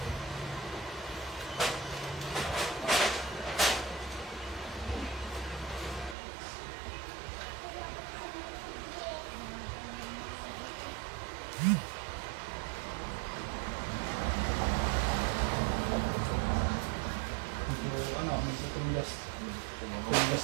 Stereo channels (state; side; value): drops out; left; at 6.2 s